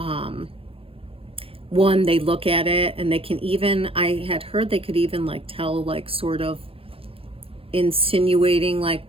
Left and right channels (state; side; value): late; left; 0.27 ms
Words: one, they look at it and they can even, I had heard they could even like tell like sort of insinuating